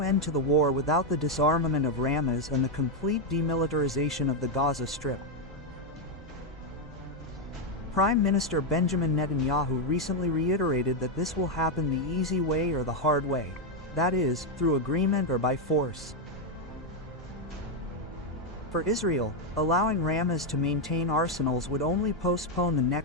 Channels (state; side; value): normal; both; correlation 0.03